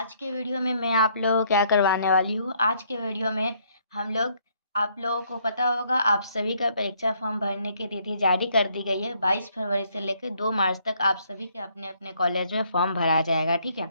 के वीडियो में मैं आप लोगों को क्या करवाने वाली हूँ। आज के वीडियो में हम लोग आप लोगों को पता होगा आप सभी का परीक्षा फॉर्म भरने की तिथि जारी कर दी गई है। 22 फरवरी से लेकर 2 मार्च तक आप सभी के अपने अपने कॉलेज में फॉर्म भरा जाएगा। ठीक है,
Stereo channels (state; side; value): inverted; both; correlation -0.68